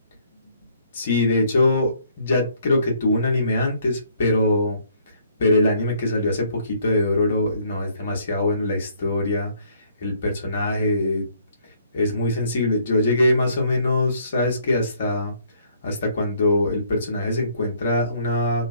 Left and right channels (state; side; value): inverted; both; correlation -0.65